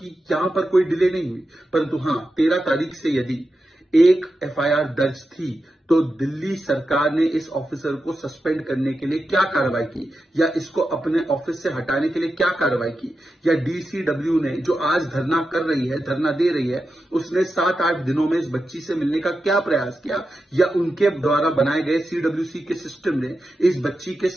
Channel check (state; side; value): normal; both; correlation 0.90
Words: कि यहां पर कोई डिले नहीं हुई। परंतु हां, 13 तारीख से यदि एक एफआईआर दर्ज थी, तो दिल्ली सरकार ने इस ऑफिसर को सस्पेंड करने के लिए क्या कार्रवाई की, या इसको अपने ऑफिस से हटाने के लिए क्या कार्रवाई की, या डीसीडब्ल्यू ने, जो आज धरना कर रही है, धरना दे रही है, उसने 7-8 दिनों में इस बच्ची से मिलने का क्या प्रयास किया, या उनके द्वारा बनाए गए सीडब्ल्यूसी के सिस्टम ने इस बच्ची के